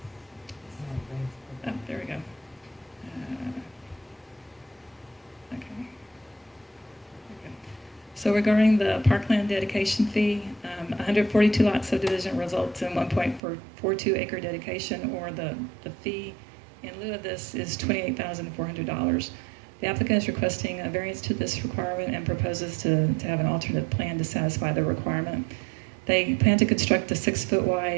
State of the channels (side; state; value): left; drops out; at 13.4 s